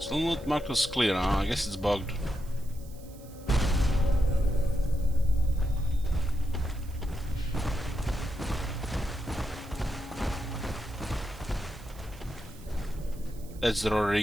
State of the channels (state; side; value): noise; right; hiss, 23 dB below the sound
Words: not marked as clear, huh? I guess it's bugged. That's the